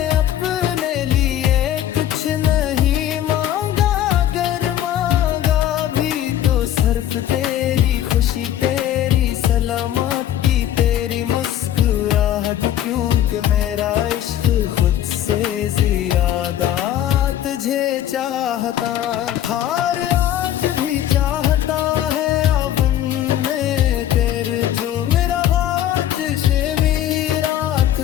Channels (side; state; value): right; quieter; 11.6 dB